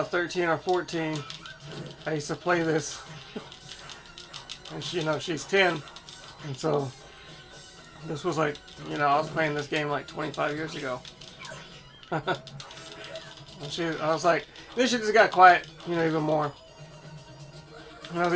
13 or 14, I used to play this, and she, you know, she's 10, and so this was like, you know, I was playing this game like 25 years ago. And I was like, then she just got quiet, you know, even more. And I was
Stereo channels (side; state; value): both; identical; correlation 1.00